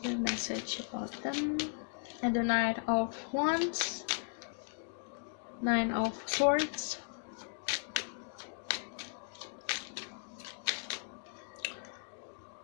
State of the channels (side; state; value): right; silent; 53 dB below the other